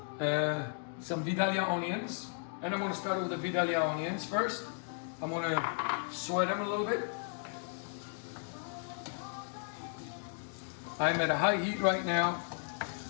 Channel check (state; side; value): silent; right; 54 dB below the other